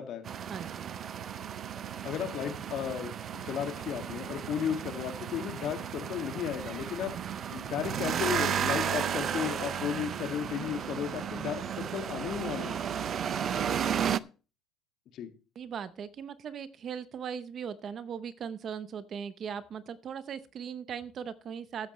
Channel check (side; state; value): both; normal; correlation 0.57